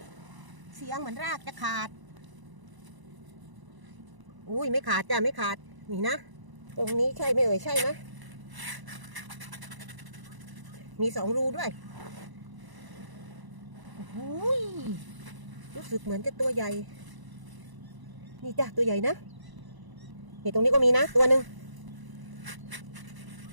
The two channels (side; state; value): left; late; 1.0 ms